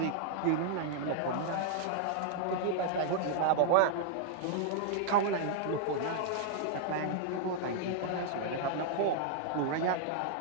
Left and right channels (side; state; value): both; different; correlation -0.01